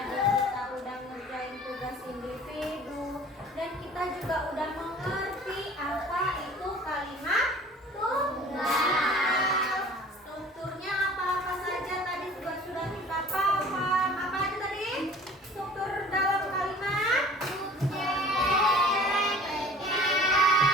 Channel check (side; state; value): both; normal; correlation 0.47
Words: kita udah ngerjain tugas individu, dan kita juga udah mengerti apa itu kalimat tunggal. Strukturnya apa-apa saja tadi juga sudah kita paham. Apa aja tadi? Struktur dalam kalimat